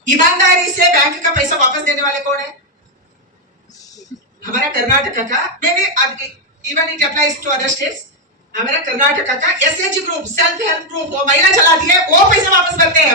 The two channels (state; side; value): normal; both; correlation 0.03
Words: ईमानदारी से बैंक का पैसा वापस देने वाले कौन है? हमारा कर्नाटक का, मैं even it applies to other states, हमारा कर्नाटक का SHG group, self help group, वो महिला चलाती है, वो पैसे वापस करते